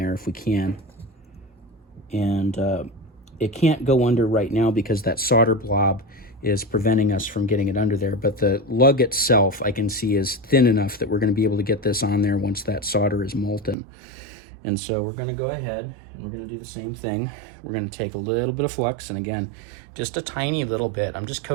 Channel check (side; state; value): left; drops out; at 13.8 s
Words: if we can. And it can't go under right now because that solder blob is preventing us from getting it under there. But the lug itself, I can see, is thin enough that we're going to be able to get this on there once that solder is molten. And so we're going to go ahead and we're going to do the same thing. We're going to take a little bit of flux, and again, just a tiny little bit. I'm just